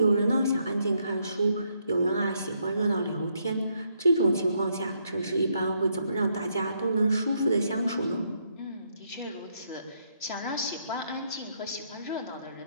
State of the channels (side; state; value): both; inverted; correlation -0.75